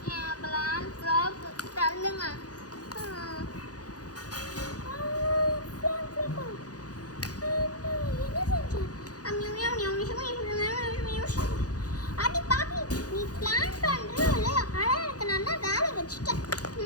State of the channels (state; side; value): late; right; 0.68 ms